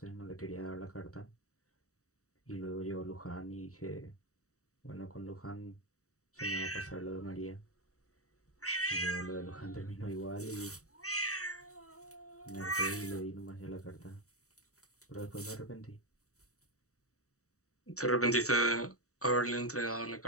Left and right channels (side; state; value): right; late; 0.65 ms